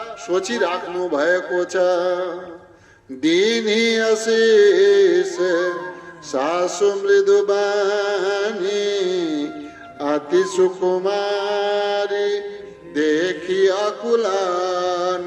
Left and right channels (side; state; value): both; identical; correlation 1.00